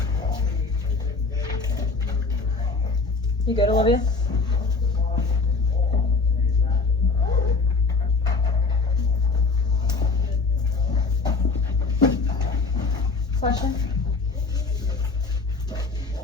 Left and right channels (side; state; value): right; quieter; 4.1 dB